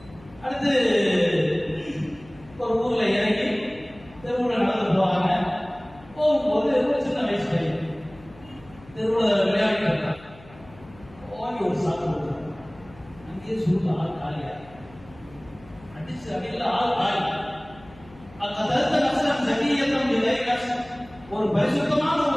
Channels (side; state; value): left; noise; hum, 23 dB below the sound